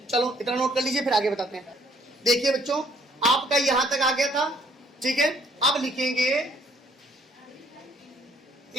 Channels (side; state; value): both; normal; correlation 0.63